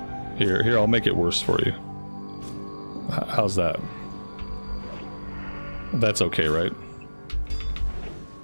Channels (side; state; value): both; inverted; correlation -1.00